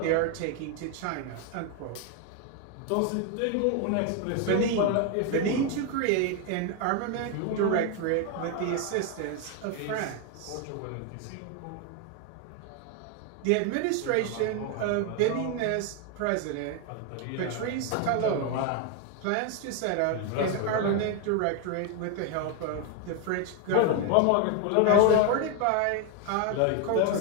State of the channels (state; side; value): different; both; correlation 0.01